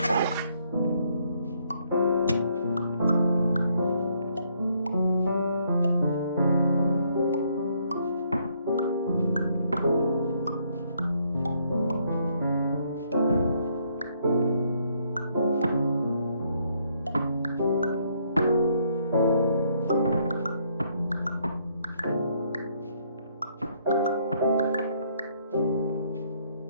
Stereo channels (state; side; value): inverted; both; correlation -0.70